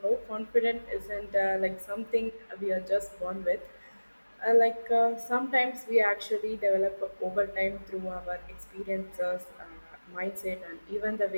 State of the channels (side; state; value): both; inverted; correlation -1.00